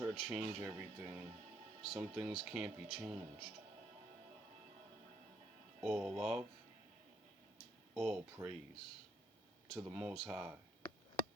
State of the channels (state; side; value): normal; both; correlation 0.71